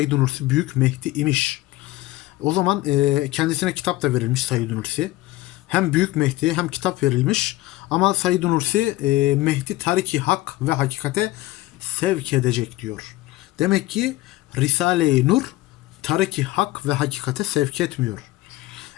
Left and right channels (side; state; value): right; quieter; 17.8 dB